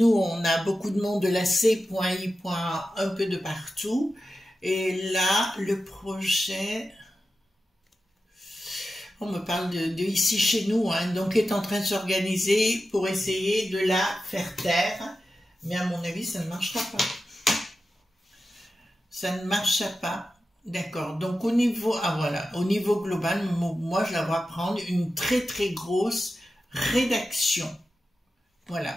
on a beaucoup de monde de la C.I. un peu de partout, et là, le projet... On me parle de ici chez nous, hein, donc est en train de s'organiser pour essayer de la faire taire. Mais à mon avis, ça ne marchera pas. Ça ne marchera pas. D'accord. Donc au niveau, voilà, au niveau global, moi je la vois prendre une très très grosse rédaction.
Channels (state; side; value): normal; both; correlation 0.92